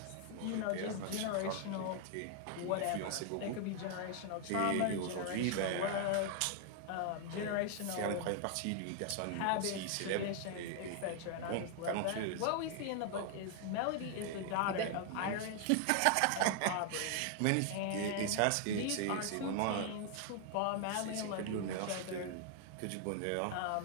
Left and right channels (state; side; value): different; both; correlation 0.00